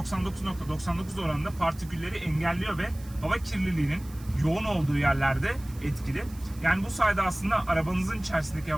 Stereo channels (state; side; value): noise; right; hiss, 22 dB below the sound